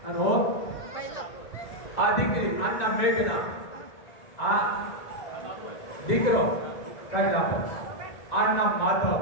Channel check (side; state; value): right; late; 1.4 ms